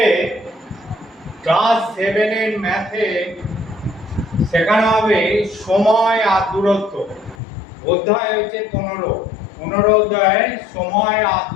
ক্লাস 7 এর ম্যাথে শেখানো হবে সময় আর দূরত্ব। অধ্যায় হচ্ছে 15 অধ্যায়ে সময় আর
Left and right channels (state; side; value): drops out; right; at 7.4 s